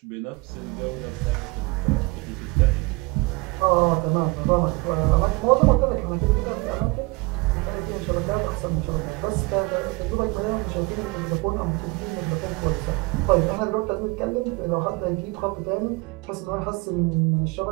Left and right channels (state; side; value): quieter; left; 25.0 dB